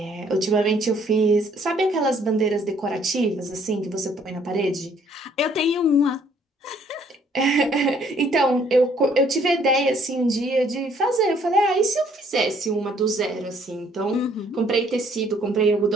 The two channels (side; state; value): both; normal; correlation 0.63